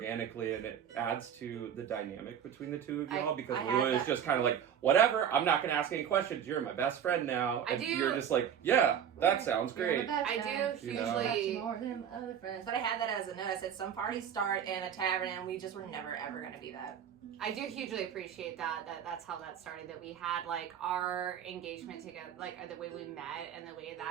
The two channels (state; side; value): quieter; left; 8.7 dB